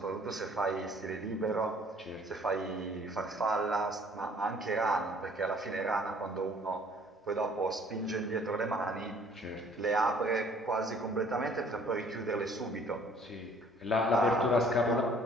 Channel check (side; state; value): both; normal; correlation 0.56